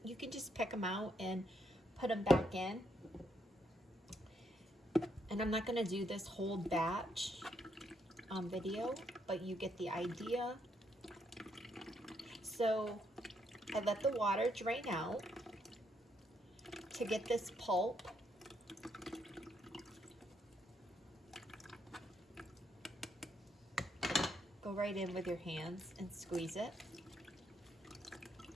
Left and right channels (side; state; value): both; normal; correlation 0.75